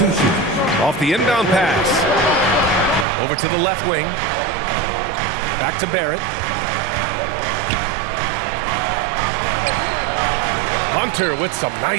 Off the inbound pass. Over to the left wing. Back to Barrett. Hunter with some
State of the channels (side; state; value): left; drops out; at 3.1 s